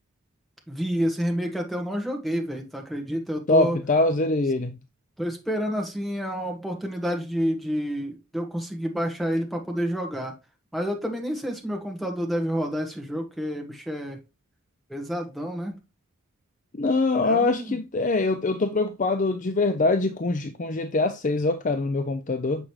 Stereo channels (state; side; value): normal; both; correlation 0.43